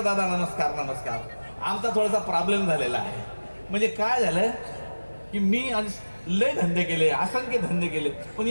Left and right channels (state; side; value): inverted; both; correlation -1.00